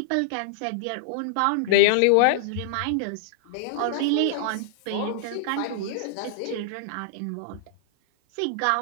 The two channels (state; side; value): different; both; correlation -0.01